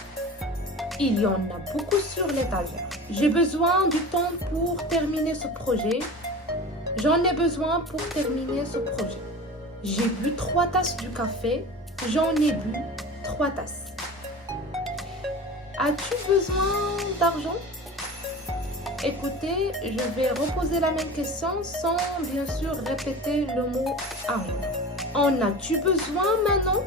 Il y en a beaucoup sur l'étagère. J'ai besoin du temps pour terminer ce projet. J'en ai besoin pour terminer ce projet. J'ai bu 3 tasses du café. J'en ai bu 3 tasses. As-tu besoin d'argent? Écoutez, je vais reposer la même question sans bien sûr répéter le mot argent. En as-tu besoin maintenant?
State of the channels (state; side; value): normal; both; correlation 0.35